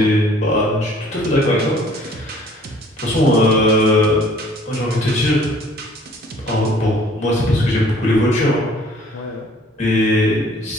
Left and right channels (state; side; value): normal; both; correlation 0.55